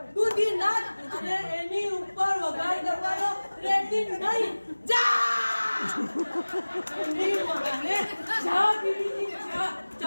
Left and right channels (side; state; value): both; inverted; correlation -1.00